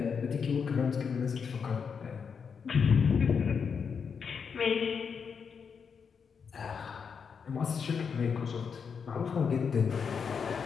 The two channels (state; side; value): quieter; right; 6.3 dB